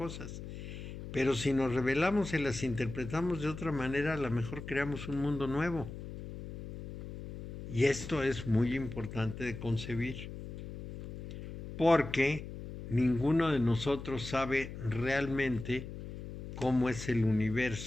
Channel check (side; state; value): left; noise; hum, 10 dB below the sound